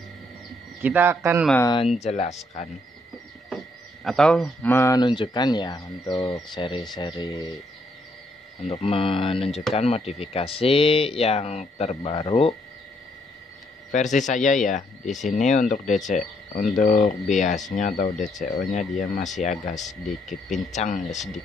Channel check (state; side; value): normal; both; correlation 0.72